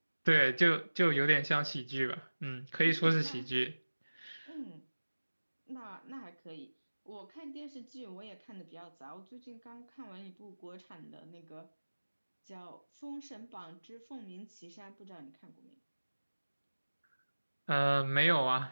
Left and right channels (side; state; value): both; inverted; correlation -1.00